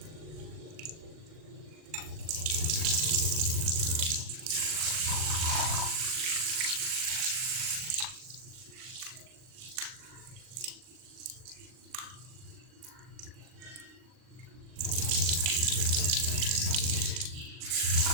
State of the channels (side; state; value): left; late; 40 ms